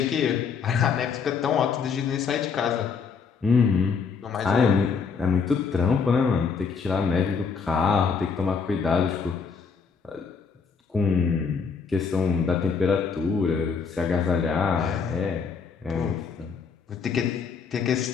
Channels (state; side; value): quieter; right; 5.6 dB